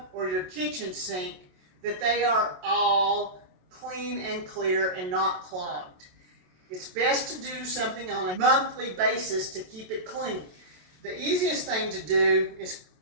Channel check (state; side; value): late; left; 27 ms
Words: or your kitchen sink, that they are all clean and clear and not clogged. It's best to do something on a monthly basis to keep it clean. The easiest thing to do is